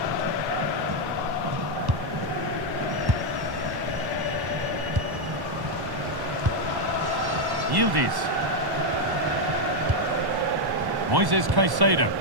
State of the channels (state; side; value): late; left; 1.1 ms